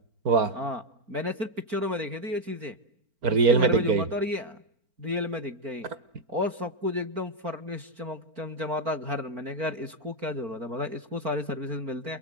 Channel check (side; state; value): left; late; 4.4 ms